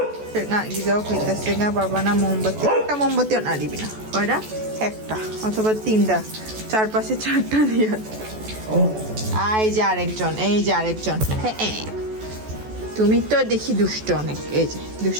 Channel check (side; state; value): left; late; 14 ms